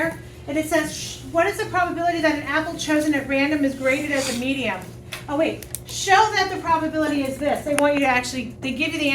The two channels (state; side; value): identical; both; correlation 1.00